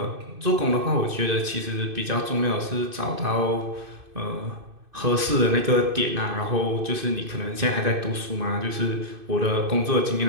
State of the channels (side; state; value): left; late; 2.6 ms